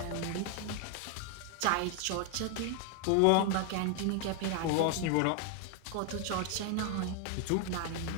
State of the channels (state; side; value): different; both; correlation 0.00